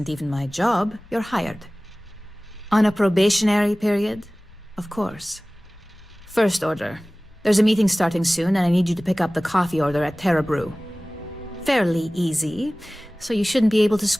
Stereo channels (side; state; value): both; normal; correlation 0.98